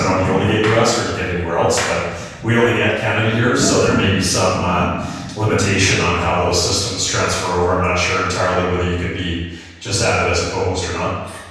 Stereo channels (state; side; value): identical; both; correlation 1.00